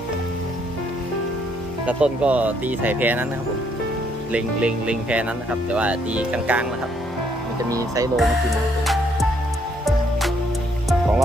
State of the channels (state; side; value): normal; both; correlation 0.70